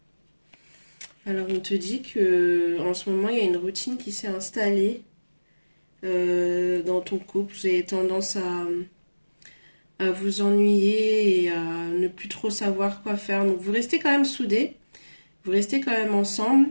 Alors, on te dit que en ce moment, il y a une routine qui s'est installée dans ton couple. Vous avez tendance à vous ennuyer et à ne plus trop savoir quoi faire. Donc, vous restez quand même soudés, vous restez quand même ensemble.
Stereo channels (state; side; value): inverted; both; correlation -1.00